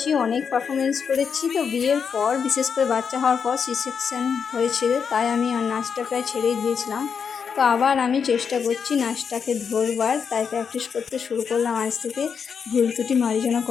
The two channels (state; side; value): quieter; right; 6.5 dB